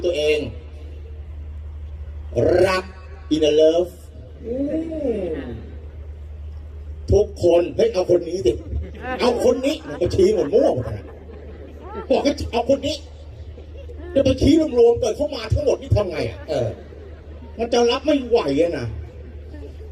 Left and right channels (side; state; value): both; identical; correlation 1.00